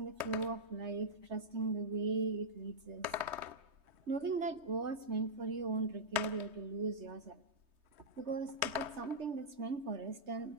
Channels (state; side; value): late; left; 3.1 ms